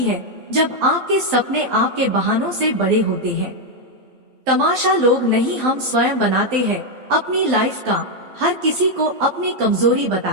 है जब आपके सपने आपके बहानों से बड़े होते हैं। तमाशा लोग नहीं, हम स्वयं बनाते हैं अपनी लाइफ का, हर किसी को अपनी कमजोरी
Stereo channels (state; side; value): late; left; 12 ms